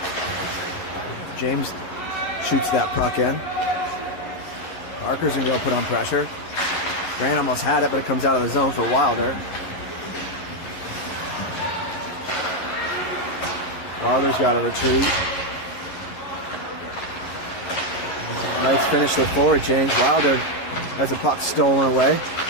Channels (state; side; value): late; right; 11 ms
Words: James shoots that puck in. Parker's going to put on pressure. Grant almost had it, but it comes out of the zone for Wilder. Wilder's got to retreat. Knights finish their forward change. Wilder has the puck stolen away.